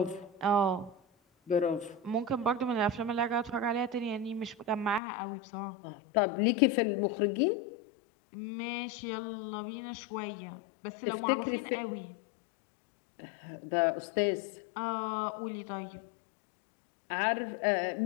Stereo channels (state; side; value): drops out; right; at 5.0 s